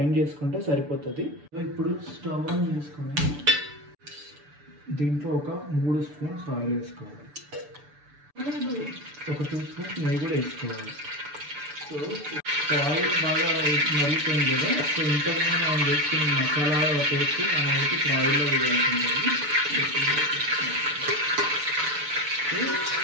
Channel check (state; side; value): late; left; 6.9 ms